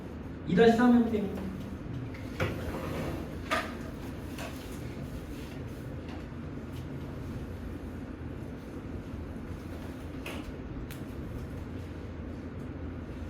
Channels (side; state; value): both; identical; correlation 1.00